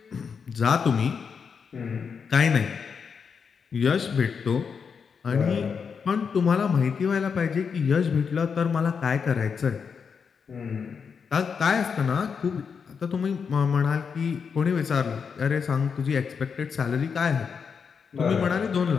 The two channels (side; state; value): right; quieter; 6.2 dB